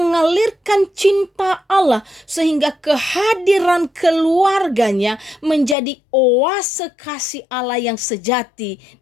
cinta Allah, sehingga kehadiran keluarganya menjadi oase kasih Allah yang sejati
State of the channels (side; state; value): right; drops out; at 5.8 s